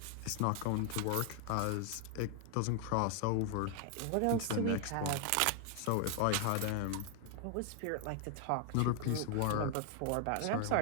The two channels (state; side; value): different; both; correlation 0.00